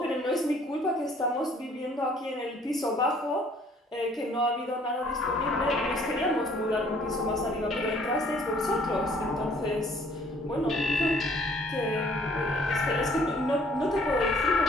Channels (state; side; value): normal; both; correlation 0.59